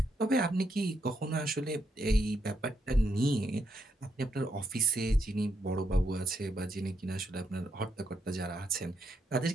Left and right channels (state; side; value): normal; both; correlation 0.79